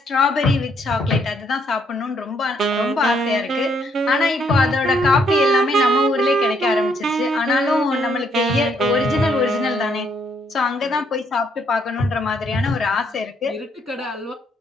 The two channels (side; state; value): both; normal; correlation 0.71